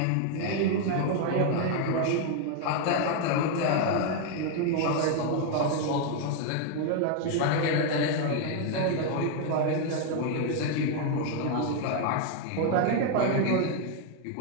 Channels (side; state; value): both; different; correlation 0.00